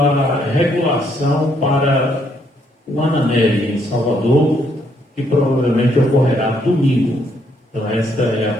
regulação para o Ananelli, em Salvador, que provavelmente ocorrerá domingo. Então esta é a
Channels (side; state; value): both; normal; correlation 0.71